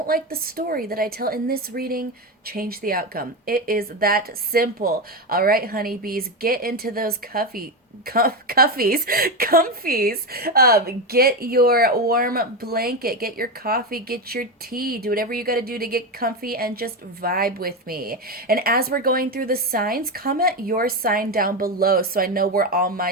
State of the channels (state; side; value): normal; both; correlation 0.14